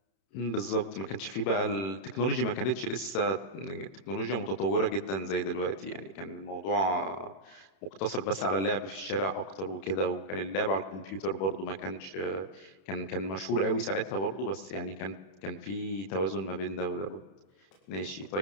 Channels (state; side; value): late; right; 31 ms